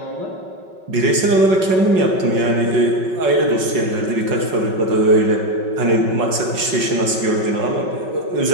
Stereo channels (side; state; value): left; late; 5.3 ms